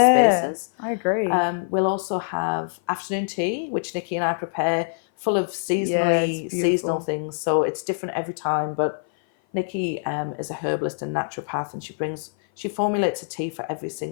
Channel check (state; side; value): silent; right; 56 dB below the other